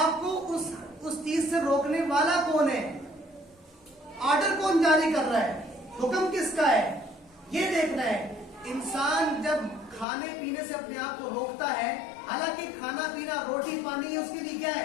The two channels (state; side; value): drops out; right; at 10.1 s